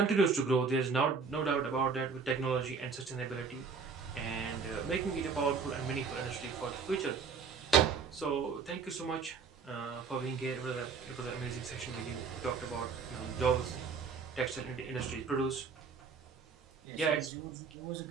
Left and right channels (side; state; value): left; quieter; 5.4 dB